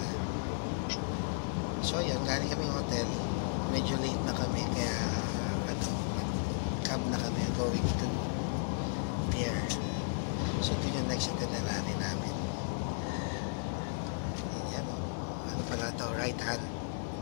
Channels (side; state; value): right; silent; digital silence